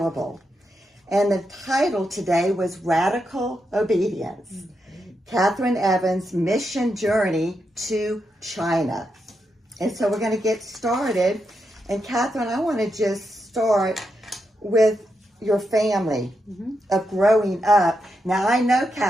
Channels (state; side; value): normal; both; correlation 0.84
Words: And the title today was Radical Obedience. Kathryn Evans' mission journey to China. And so we're going to get started. And Kathryn, I want to just start with your family of growing up. Now I know